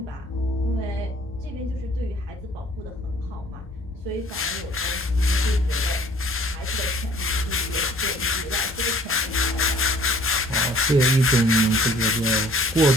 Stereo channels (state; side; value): normal; both; correlation 0.54